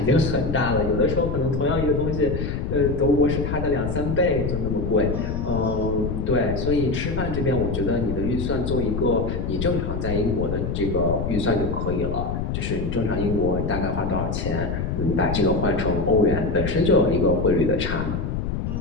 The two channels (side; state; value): left; noise; rumble, 2 dB below the sound